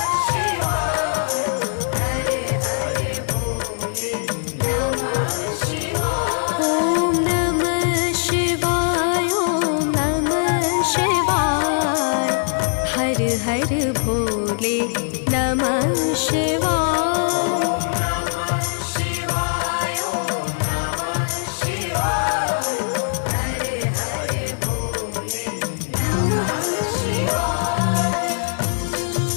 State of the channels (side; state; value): right; silent; digital silence